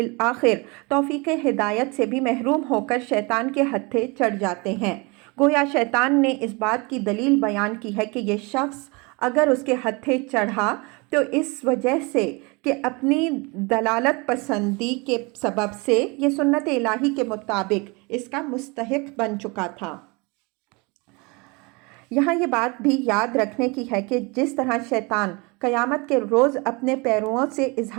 توفیق ہدایت سے بھی محروم ہو کر شیطان کے ہتھے چڑھ جاتے ہیں۔ گویا شیطان نے اس بات کی دلیل بیان کی ہے کہ یہ شخص اگر اس کے ہتھے چڑھا تو اس وجہ سے کہ اپنی دلالت پسندی کے سبب سے یہ سنت الہی کے مطابق اس کا مستحق بن چکا تھا۔ یہاں یہ بات بھی یاد رکھنے کی ہے کہ جس طرح شیطان قیامت کے روز اپنے پیرووں سے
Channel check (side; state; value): left; quieter; 27.9 dB